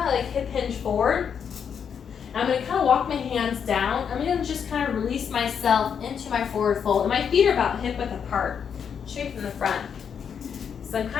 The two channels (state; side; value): quieter; right; 7.3 dB